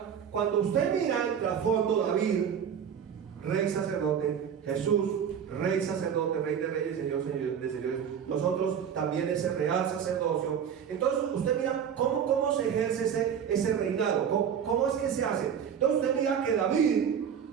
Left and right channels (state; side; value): quieter; left; 8.0 dB